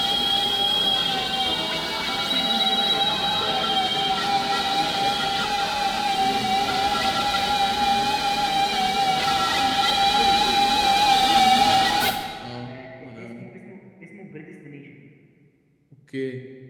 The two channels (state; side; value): identical; both; correlation 1.00